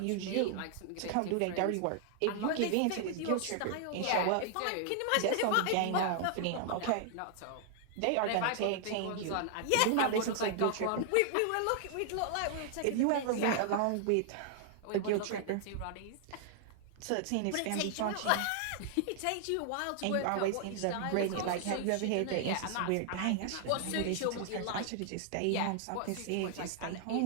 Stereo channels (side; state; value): both; different; correlation -0.01